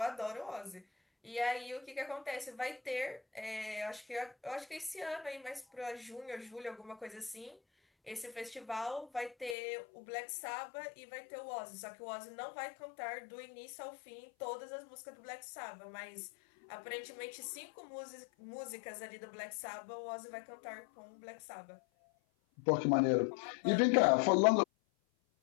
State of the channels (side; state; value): right; drops out; at 9.6 s